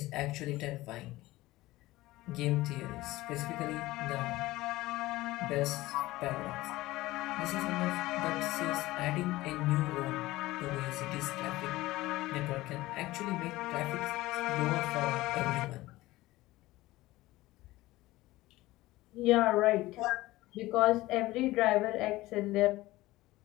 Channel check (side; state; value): right; quieter; 18.2 dB